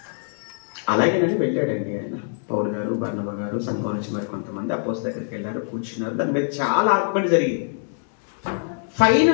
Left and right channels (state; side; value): silent; right; 63 dB below the other